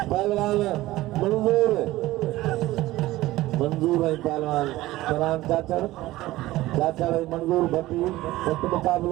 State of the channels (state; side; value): quieter; left; 17.1 dB